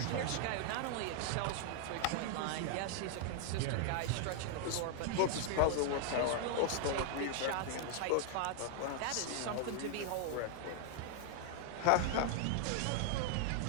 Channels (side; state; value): both; different; correlation 0.00